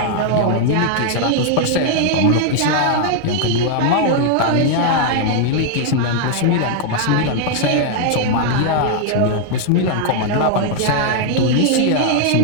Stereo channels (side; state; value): both; different; correlation 0.00